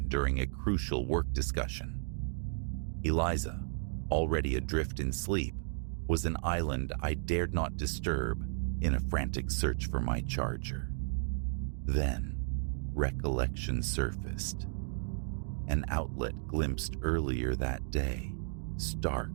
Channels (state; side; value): silent; left; digital silence